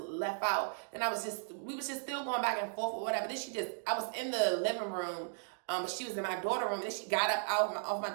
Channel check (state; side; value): silent; left; digital silence